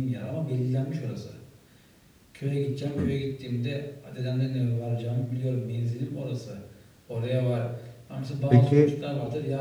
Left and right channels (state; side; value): identical; both; correlation 1.00